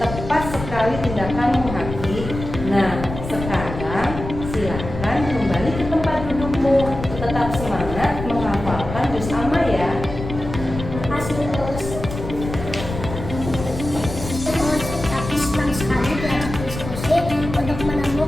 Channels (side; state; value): left; noise; rumble, 8 dB below the sound